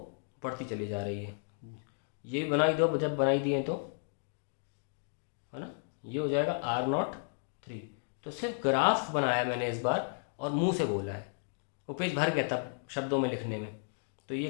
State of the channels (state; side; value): silent; right; digital silence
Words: बढ़ती चली जा रही है। ये भी बनाई दो, जब बनाई दिए तो, है ना, ये हो जाएगा R03। तो सिर्फ ग्राफ बनाया मैंने इस बार और मुंह से बोला है, वो पेज भर गया तब शब्दों में लिखने में। तो ये